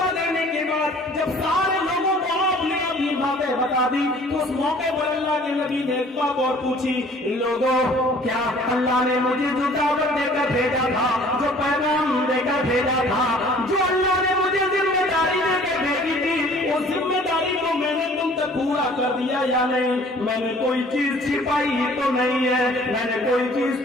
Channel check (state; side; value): normal; both; correlation 0.52